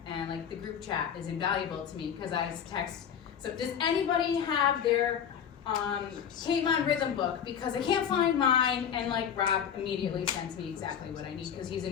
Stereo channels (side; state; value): right; quieter; 8.3 dB